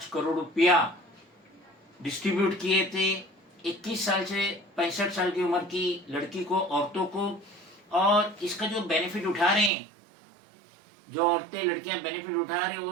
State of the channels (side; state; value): left; drops out; at 9.7 s